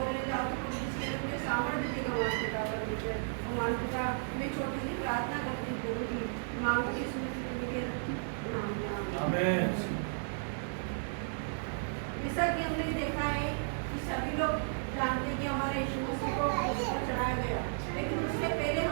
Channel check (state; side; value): silent; left; 55 dB below the other